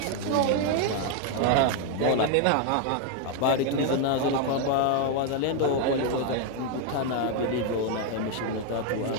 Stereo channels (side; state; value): both; different; correlation 0.01